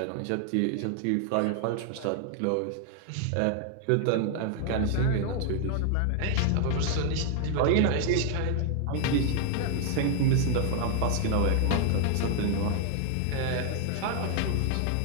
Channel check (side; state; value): both; different; correlation 0.00